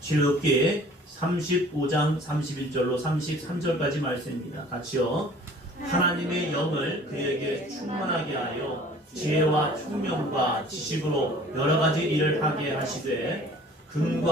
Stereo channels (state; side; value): normal; both; correlation 0.50